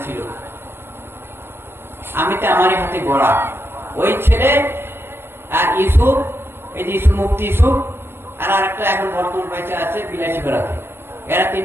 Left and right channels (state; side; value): late; left; 0.11 ms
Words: ছিল, আমি তো আমারই হাতে গড়া। ওই ছেলে আর ইউসুফ, এই যে ইউসুফ, মুফতি ইউসুফ, আর আরেকটা এখন বর্তমান পয়সা আছে বিলাসী বেড়াতে, এরা